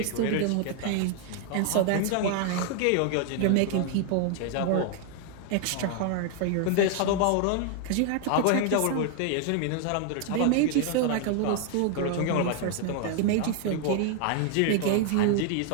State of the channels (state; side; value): different; both; correlation 0.00